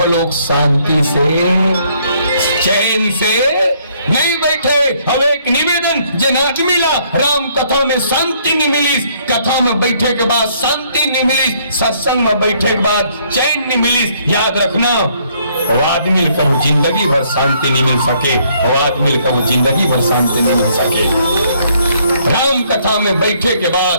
शांति से चैन से नहीं बैठे। अब एक निवेदन जे नाच मिला राम कथा में शांति नहीं मिली, कथा में बैठे के बाद शांति नहीं मिली, सत्संग में बैठे के बाद चैन नहीं मिली। याद रखना, वो आदमी का वो जिंदगी भर शांति नहीं मिल सके, वो आदमी का वो जिंदगी भर शांति नहीं मिल सके। राम कथा में बैठे के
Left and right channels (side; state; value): both; inverted; correlation -0.66